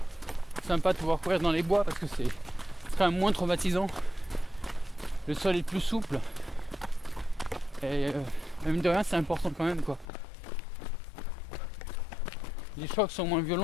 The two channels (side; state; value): right; drops out; at 10.1 s